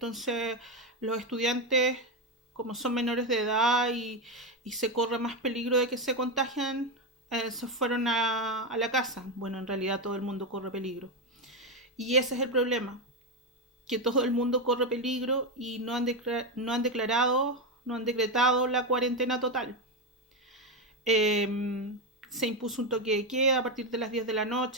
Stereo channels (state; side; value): normal; both; correlation 0.10